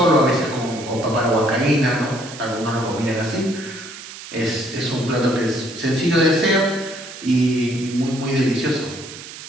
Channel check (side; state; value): right; noise; hiss, 14 dB below the sound